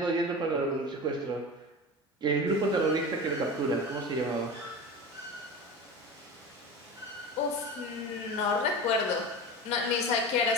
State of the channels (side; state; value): both; normal; correlation 0.29